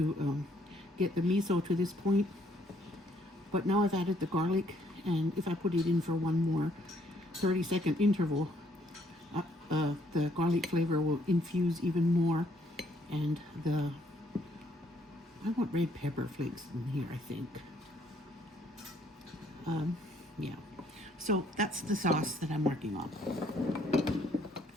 get the miso to this point. But now I've added the garlic, and if I put it in for one more 30-second interval, the garlic flavor will infuse even more, and I want red pepper flakes in here, I think. Yeah, so that's the sauce that I'm working on.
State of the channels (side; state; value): both; normal; correlation 0.67